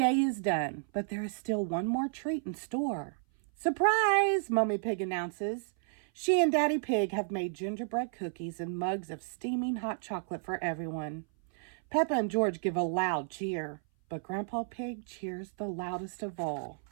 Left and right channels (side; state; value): left; silent; 56 dB below the other